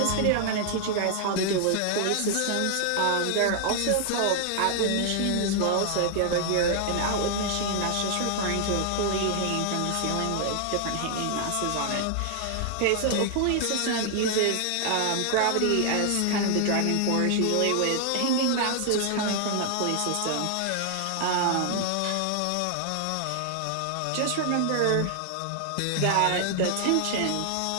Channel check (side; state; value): both; different; correlation 0.00